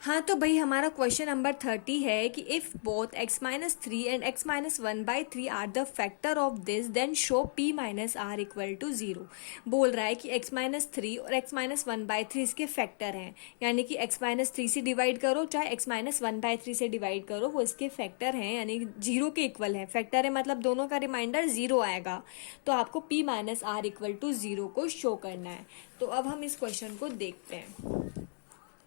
हाँ तो भाई हमारा क्वेश्चन नंबर 30 है कि if both x-3 and x-1/3 are the factor of this then show p-r equal to 0। बोल रहा है कि x-3 और x-1/3 इसके फैक्टर हैं, यानी कि x-3 से डिवाइड करो चाहे x-1/3 से डिवाइड करो, वो इसके फैक्टर हैं, यानी 0 के इक्वल है। फैक्टर है मतलब दोनों का रिमाइंडर 0 आएगा, तो आपको p-r इक्वल टू 0 को शो करना है। तो अब हम इस क्वेश्चन को देखते हैं।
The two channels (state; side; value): silent; right; digital silence